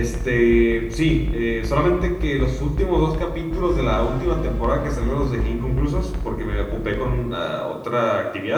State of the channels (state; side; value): identical; both; correlation 1.00